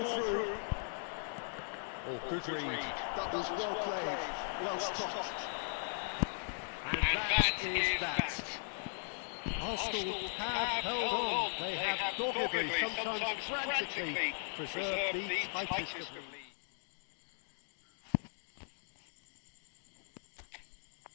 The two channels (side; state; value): right; silent; digital silence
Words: through. Oh, good read. That was well played. Well stopped. And that is that. Arsenal have held on. They have doggedly, sometimes frantically, preserved the tightest of leads.